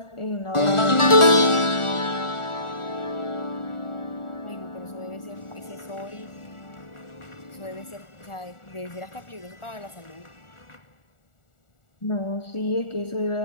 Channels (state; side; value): late; right; 1.4 ms